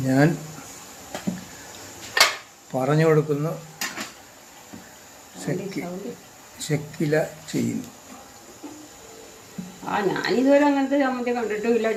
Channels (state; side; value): identical; both; correlation 1.00